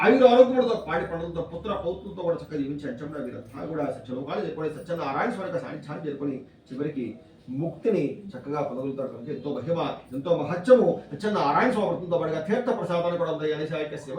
ఆయుర ఆరోగ్యములతో పాడి పండుగలతో పుత్ర పౌత్రులతో కూడా చక్కగా జీవించి అంచంగా వీరంతా కూడా సత్యలోకాలు చేరుకొని సత్యనారాయణ స్వామి యొక్క సాన్నిధ్యాన్ని చేరుకొని చివరికి ముక్తిని చక్కగా పొందగలుగుతారు కనుక ఎంతో మహిమ ఎంతో మహత్యము సత్యనారాయణ స్వామి వ్రతంతో పాటుగా తీర్థ ప్రసాదాన్ని కూడా ఉంది అనేసి ఆ యొక్క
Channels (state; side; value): identical; both; correlation 1.00